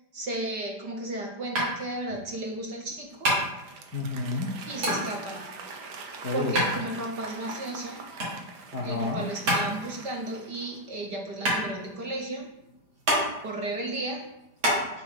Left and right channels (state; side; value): late; left; 5.0 ms